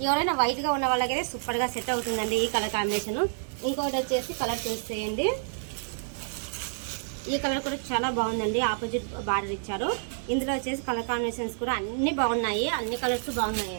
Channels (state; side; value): silent; left; digital silence